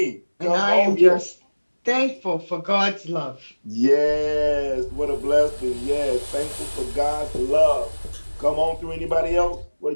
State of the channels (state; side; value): inverted; both; correlation -1.00